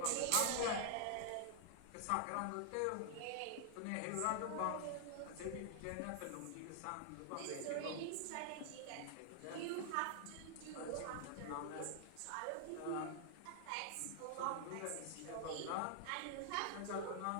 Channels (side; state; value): both; different; correlation 0.00